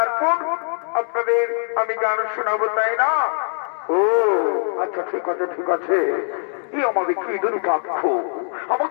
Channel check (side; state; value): right; silent; 64 dB below the other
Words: আপনাদের আমি গান শোনাবো, তাই না? ও আচ্ছা, ঠিক আছে ঠিক আছে। এই আমাদের কি দুর্ভাগ্য,